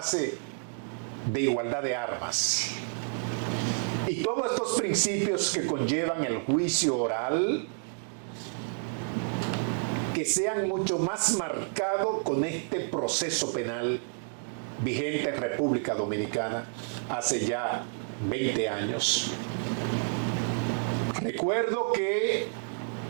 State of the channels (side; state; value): left; silent; 58 dB below the other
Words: de igualdad de armas. Y todos estos principios que conllevan el juicio oral, que sean mucho más marcados con este proceso penal vigente en República Dominicana hace ya 20 años. Recuerdo que